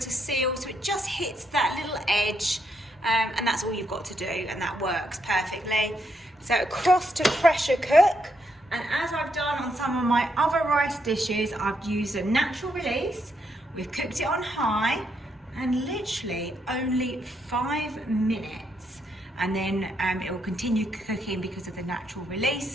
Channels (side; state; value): both; normal; correlation 0.77